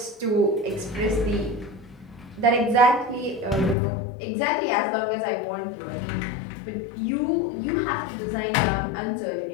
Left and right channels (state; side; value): drops out; right; at 3.8 s